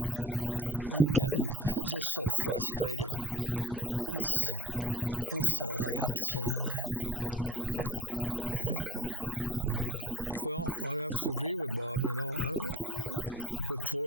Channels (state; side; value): normal; both; correlation 0.44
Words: I'm getting just so frustrated. That's all I got to say on that. Well, I have to agree with Bob,